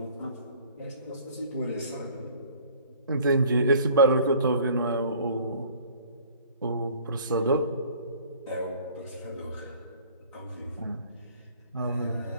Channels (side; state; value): both; inverted; correlation -0.52